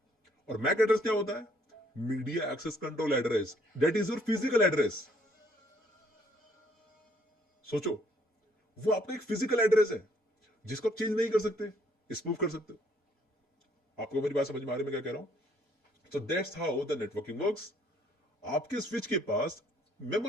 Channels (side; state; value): both; normal; correlation 0.65